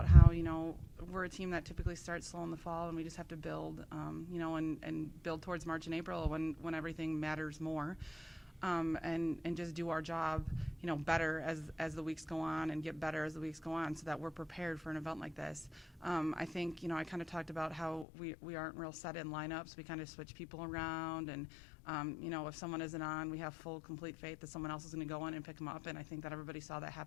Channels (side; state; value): right; drops out; at 18.1 s